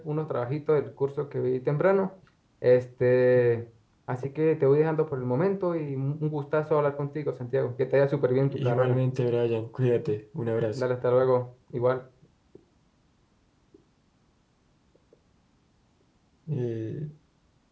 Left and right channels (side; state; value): both; identical; correlation 1.00